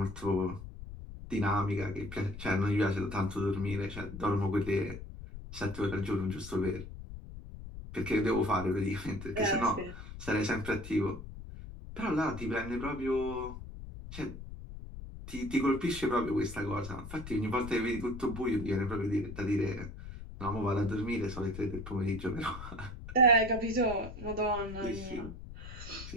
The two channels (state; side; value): noise; left; rumble, 11 dB below the sound